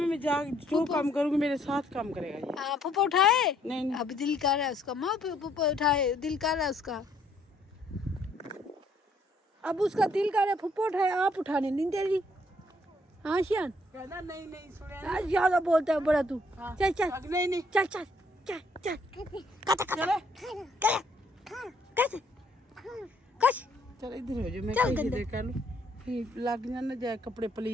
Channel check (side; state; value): both; normal; correlation 0.67